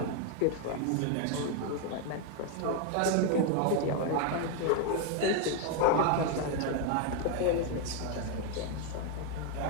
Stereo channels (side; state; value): both; different; correlation 0.01